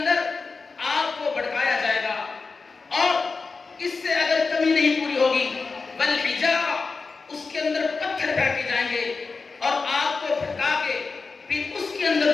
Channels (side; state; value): right; quieter; 4.4 dB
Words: آگ کو بھڑکایا جائے گا، اور اس سے اگر کمی نہیں پوری ہوگی والحجارہ، اس کے اندر پتھر پھینکے جائیں گے، اور آگ کو بھڑکا کے پھر اس کے اندر